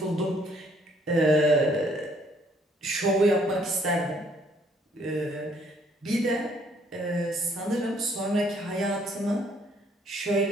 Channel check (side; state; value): both; normal; correlation 0.65